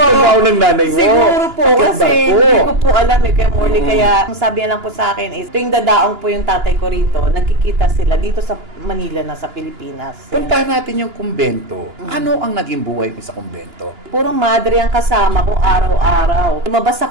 ng nanay mo? Siguro po. Akyat Kasi barko? hindi ko po alam Kuya Morley. Kaya, ang sabi niya lang po sa akin is, tuwing dadaong po yung tatay ko rito, nagkikita sila dito sa Manila na sa Pilipinas. Puntahan natin yung kumbento. Ano ang naging buhay mo sa kumbento? Puro madre ang kasama ko araw-araw. Lumabas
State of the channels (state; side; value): late; left; 2.9 ms